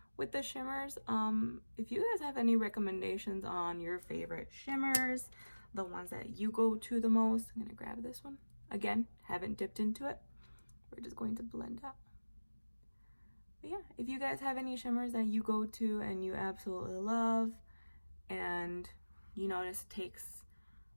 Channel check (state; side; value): inverted; both; correlation -1.00